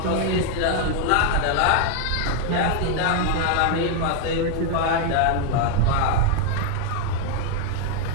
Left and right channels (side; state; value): both; different; correlation 0.00